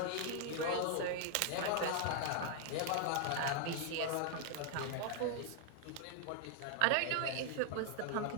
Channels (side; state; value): both; different; correlation 0.00